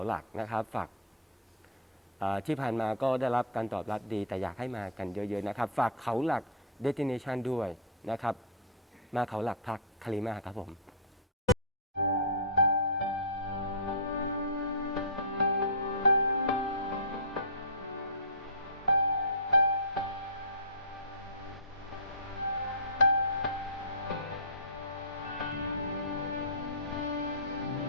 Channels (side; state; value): both; normal; correlation -0.15